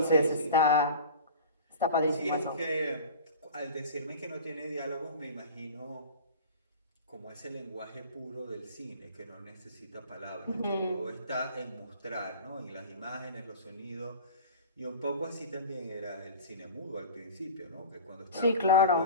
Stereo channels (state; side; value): inverted; both; correlation -0.37